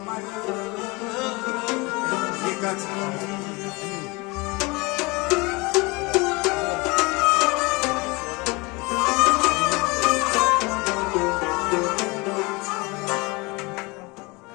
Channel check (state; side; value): quieter; right; 25.7 dB